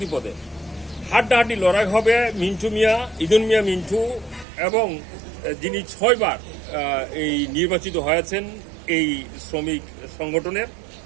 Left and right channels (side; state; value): left; drops out; at 4.5 s